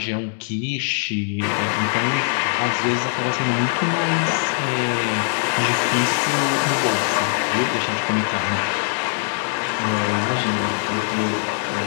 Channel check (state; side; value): silent; right; digital silence